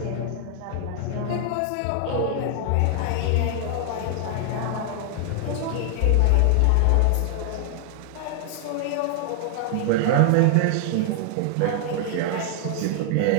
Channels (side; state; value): both; different; correlation 0.00